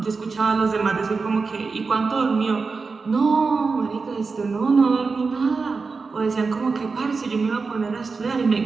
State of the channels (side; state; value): left; quieter; 4.5 dB